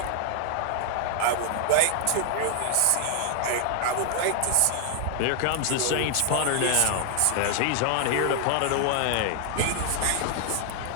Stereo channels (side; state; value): both; different; correlation 0.00